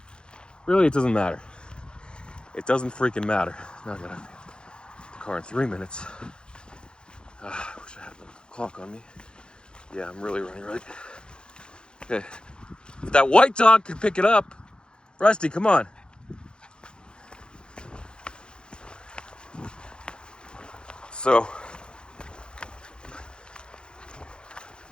really, it doesn't matter. It doesn't freaking matter. Now I gotta get the car in 3 minutes. I wish I had the clock on me. Yeah, I'm really running late. Okay. If that white dog could pick it up. Rusty, come on. So,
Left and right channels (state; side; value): late; right; 0.050 ms